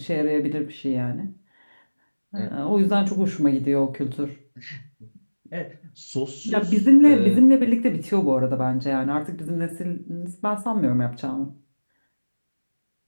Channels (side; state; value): both; inverted; correlation -1.00